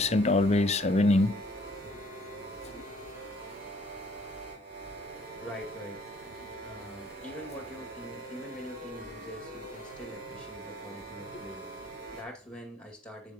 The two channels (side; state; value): both; normal; correlation 0.61